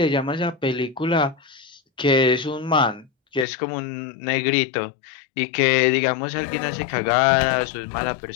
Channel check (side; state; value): right; drops out; at 3.5 s